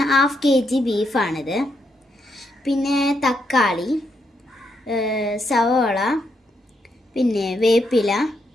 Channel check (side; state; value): both; normal; correlation 0.79